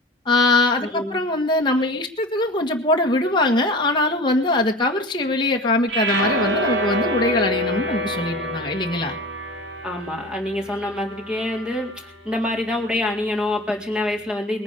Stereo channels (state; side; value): normal; both; correlation 0.35